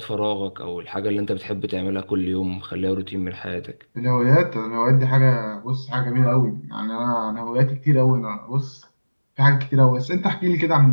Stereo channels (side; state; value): both; inverted; correlation -1.00